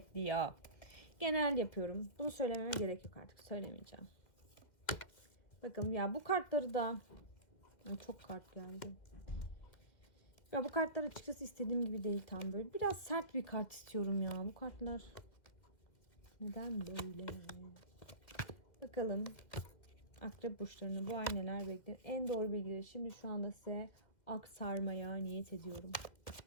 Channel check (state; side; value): late; right; 2.3 ms